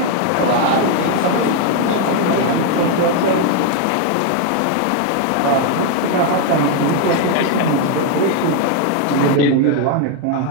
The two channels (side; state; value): both; different; correlation 0.01